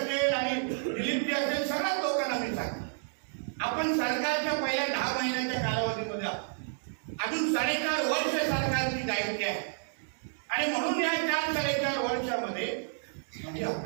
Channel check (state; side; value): silent; left; digital silence